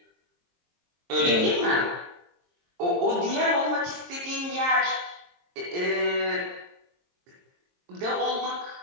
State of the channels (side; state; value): left; late; 23 ms